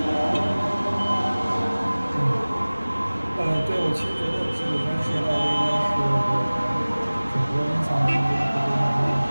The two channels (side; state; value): both; inverted; correlation -0.99